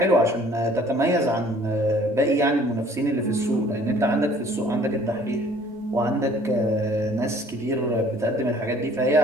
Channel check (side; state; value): both; normal; correlation 0.55